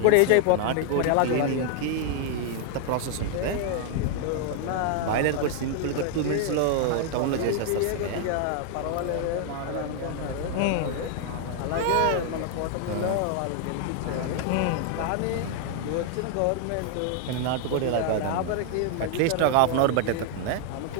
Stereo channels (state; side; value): different; both; correlation 0.00